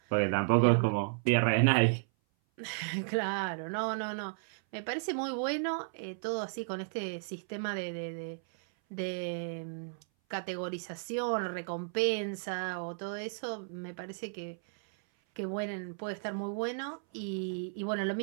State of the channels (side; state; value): left; silent; 55 dB below the other